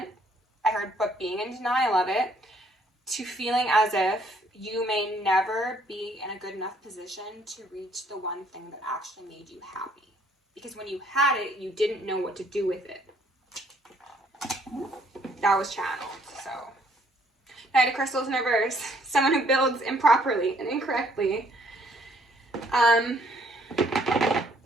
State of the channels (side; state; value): both; normal; correlation 0.64